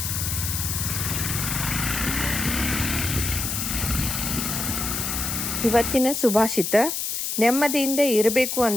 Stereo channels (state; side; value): noise; left; hiss, 2 dB below the sound